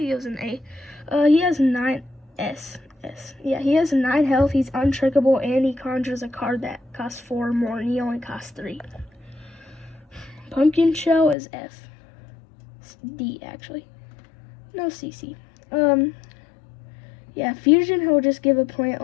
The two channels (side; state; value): right; drops out; at 11.4 s